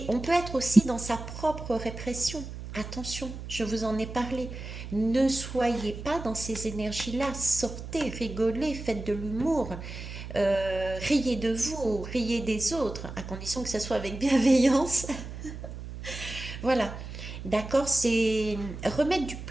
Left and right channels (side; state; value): right; noise; hum, 10 dB below the sound